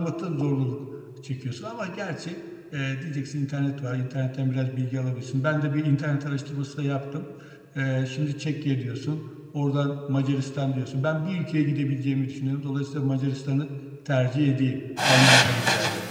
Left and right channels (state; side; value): identical; both; correlation 1.00